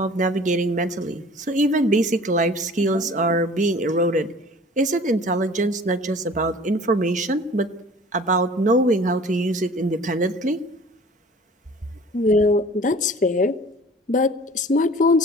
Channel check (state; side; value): normal; both; correlation 0.46